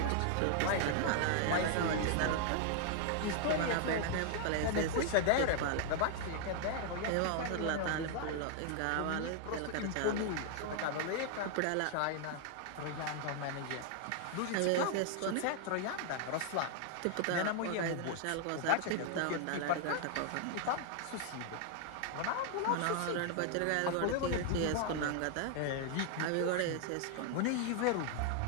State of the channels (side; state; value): both; different; correlation 0.00